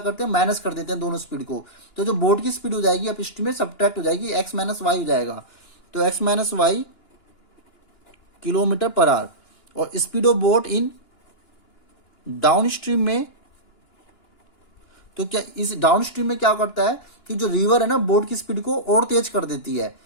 हैं, माइनस कर देते हैं दोनों स्पीड को। तो जो बोट की स्पीड हो जाएगी अप स्ट्रीम में सब्ट्रैक्ट हो जाएगी, एक्स माइनस वाई हो जाएगा। तो एक्स माइनस वाई किलोमीटर पर आवर। और speed of boat in down stream में, तो क्या इस डाउन स्ट्रीम में क्या करता है कि जो रिवर है ना बोट की स्पीड को और तेज कर देती है,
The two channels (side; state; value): right; late; 2.9 ms